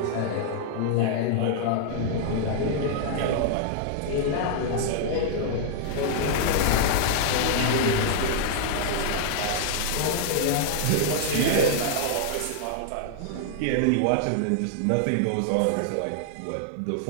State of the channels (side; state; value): both; different; correlation -0.01